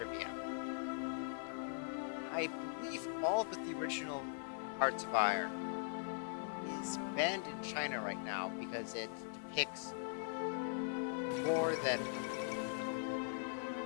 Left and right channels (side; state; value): right; silent; 50 dB below the other